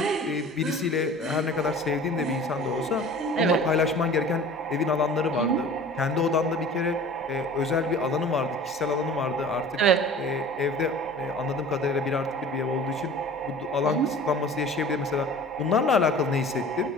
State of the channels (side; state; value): both; normal; correlation 0.42